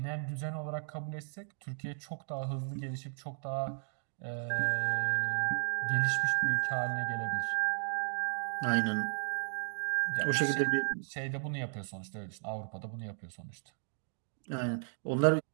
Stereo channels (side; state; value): left; silent; digital silence